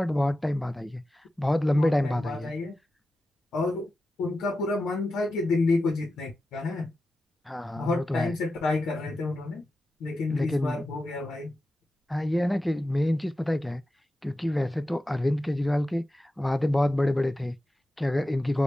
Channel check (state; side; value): normal; both; correlation 0.92